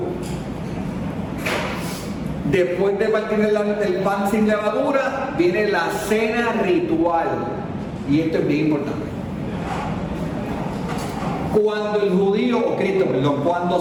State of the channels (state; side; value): identical; both; correlation 1.00